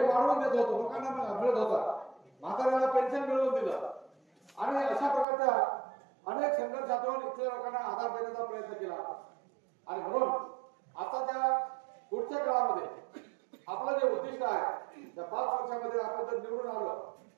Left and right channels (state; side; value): drops out; left; at 5.2 s